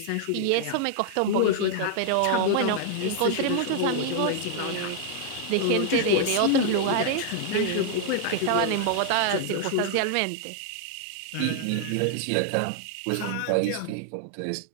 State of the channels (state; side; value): different; both; correlation 0.00